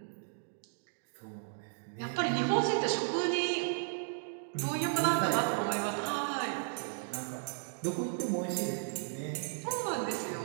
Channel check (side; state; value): left; silent; digital silence